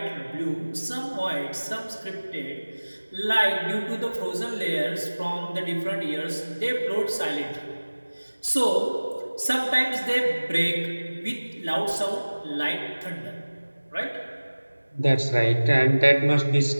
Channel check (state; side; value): inverted; both; correlation -1.00